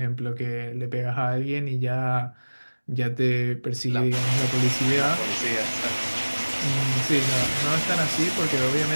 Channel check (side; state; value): both; inverted; correlation -1.00